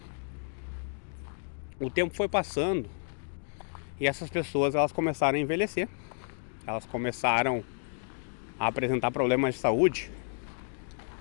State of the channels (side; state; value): right; silent; 57 dB below the other